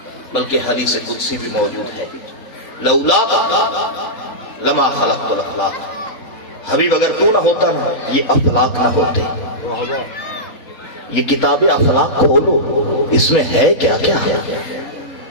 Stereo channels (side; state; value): right; late; 3.5 ms